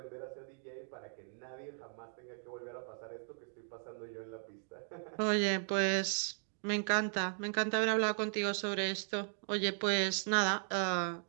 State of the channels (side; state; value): left; silent; digital silence